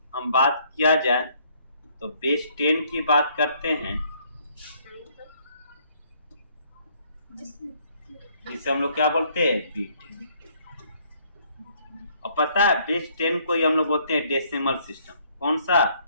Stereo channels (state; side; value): inverted; both; correlation -0.65